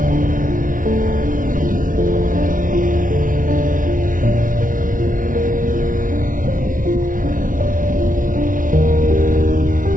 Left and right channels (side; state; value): left; late; 0.39 ms